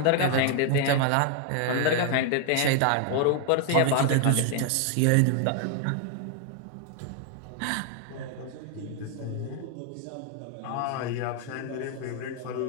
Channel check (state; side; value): different; both; correlation 0.00